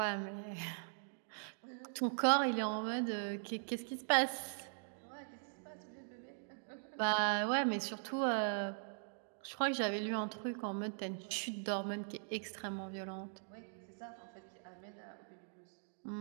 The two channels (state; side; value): silent; left; digital silence